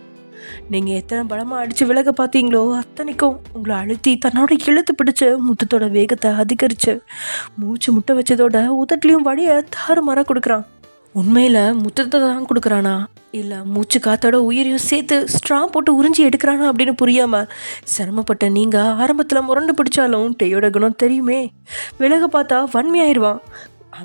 நீங்கள் எத்தனை பலமாக அடித்து விலக பார்த்தீங்களோ அத்தனைக்கும் உங்களை அழுத்தி தன்னோட இழுத்து பிடிச்சி முத்தத்தோட வேகத்தை அதிகரித்து மூச்சு முட்டை வச்சதோட உதட்லேயும் வழியை தாறுமாற கொடுக்குறான். உண்மையில் முத்தத்தை தான் கொடுக்குறானா இல்லை மூச்சு காத்தோட உயிரையும் சேர்த்து ஸ்ட்ரா போட்டு உறிஞ்சி எடுக்கிறானா அப்படின்னு புரியாமல் சிரமப்பட்ட நீங்கள் ஆரம்பத்தில் முரண்டு பிடிச்சாலும் டேயோட குணம் தெரியுமே, விலக பார்த்தா வன்மையாயிருவான்,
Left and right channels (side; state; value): both; inverted; correlation -1.00